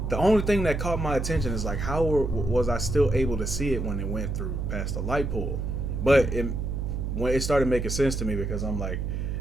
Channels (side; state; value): right; noise; hum, 2 dB below the sound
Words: The only thing that caught my attention is like, how was I still able to see it when it went through past the light pole? But when it started making sense to me, because I'm like,